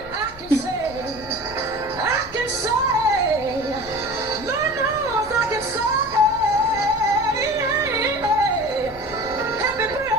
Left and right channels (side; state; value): left; noise; rumble, 18 dB below the sound